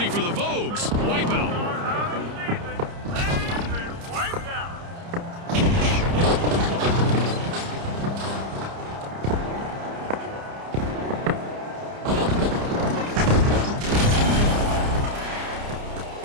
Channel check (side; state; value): left; late; 30 ms